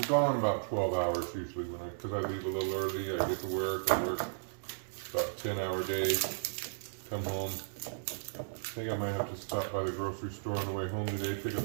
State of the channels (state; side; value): silent; left; digital silence